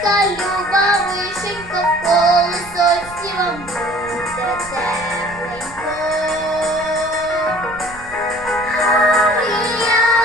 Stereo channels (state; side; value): noise; right; rumble, 19 dB below the sound